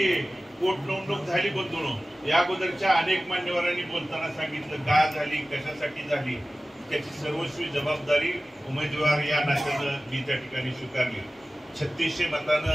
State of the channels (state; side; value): normal; both; correlation 0.97